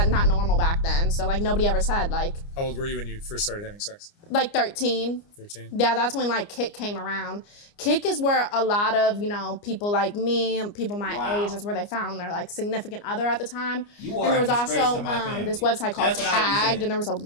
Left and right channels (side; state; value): right; late; 29 ms